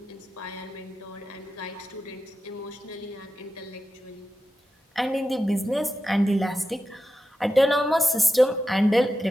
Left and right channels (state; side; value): normal; both; correlation 0.90